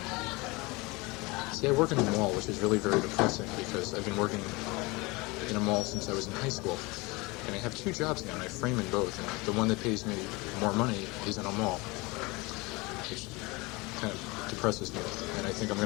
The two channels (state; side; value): quieter; right; 24.5 dB